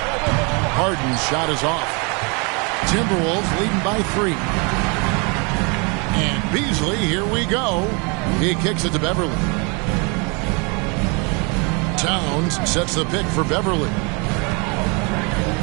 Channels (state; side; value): quieter; left; 31.8 dB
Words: Harden's shot is off. Timberwolves leading by 3. And Beasley, here we go. He kicks it to Beverly. Towns sets the pick for Beverly.